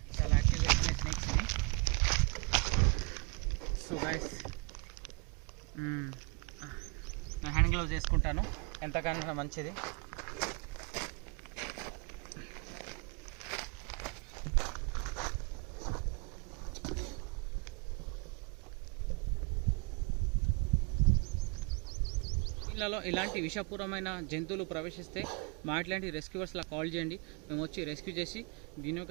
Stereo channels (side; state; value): left; quieter; 32.1 dB